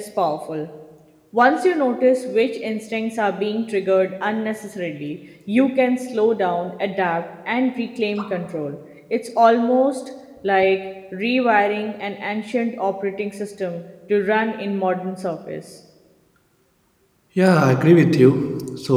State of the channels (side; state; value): both; identical; correlation 1.00